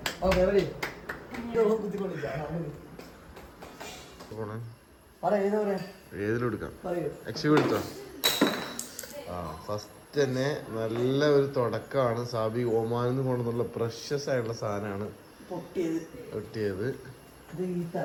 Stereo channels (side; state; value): both; identical; correlation 1.00